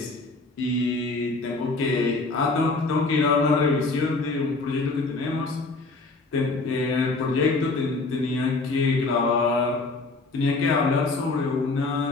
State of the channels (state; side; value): quieter; right; 3.5 dB